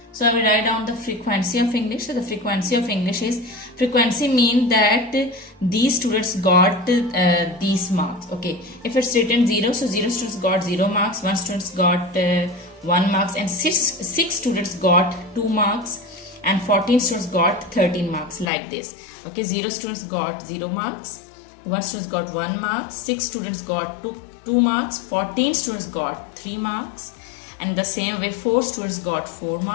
So I will write down the frequency of English. So the frequency of English is, frequency means that these students got these marks. Okay, if it's written 0, so 0 students got 0 marks, 1 students got 1 marks, and 6 students got 2 marks, and 14 students got 13 marks, like this. Okay, 0 students got 0 marks, 1 students got 1 mark, 6 students got 2 marks, 14 students got 3 marks, and the same way 4 students got 4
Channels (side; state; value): right; drops out; at 18.4 s